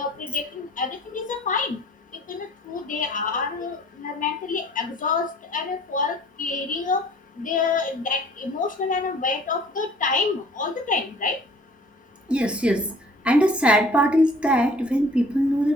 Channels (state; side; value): normal; both; correlation 0.52